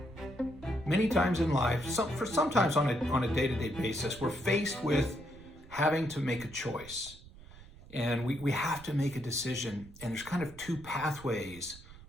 Many times in life, sometimes on a day-to-day basis, we're faced with having to make a choice. And we have to make a decision, and there's kind of two pathways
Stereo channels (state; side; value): noise; right; rumble, 19 dB below the sound